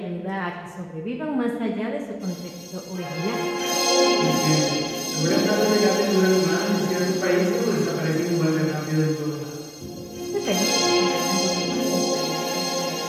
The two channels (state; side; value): identical; both; correlation 1.00